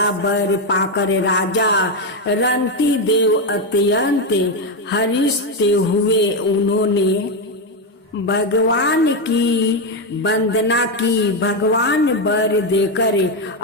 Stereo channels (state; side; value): normal; both; correlation 0.07